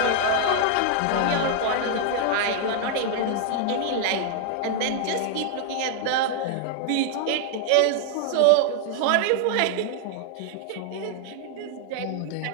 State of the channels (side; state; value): both; different; correlation 0.00